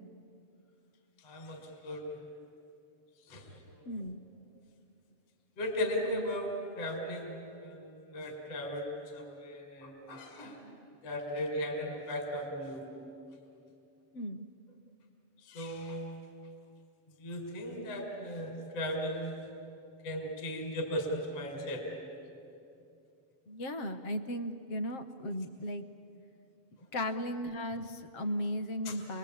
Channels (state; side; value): late; right; 7.5 ms